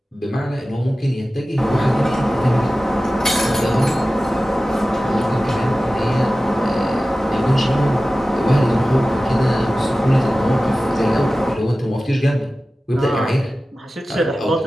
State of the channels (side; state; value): both; normal; correlation 0.96